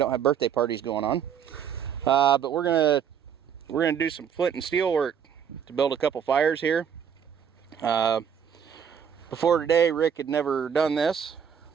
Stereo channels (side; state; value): left; quieter; 8.0 dB